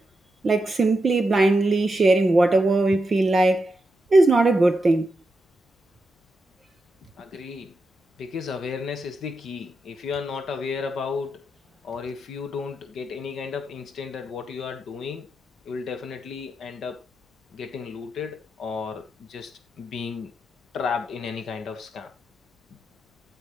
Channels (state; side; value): normal; both; correlation 0.86